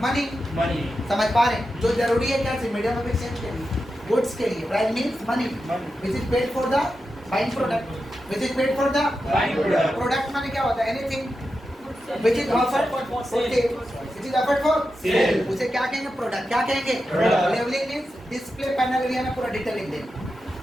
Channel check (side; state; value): both; normal; correlation 0.90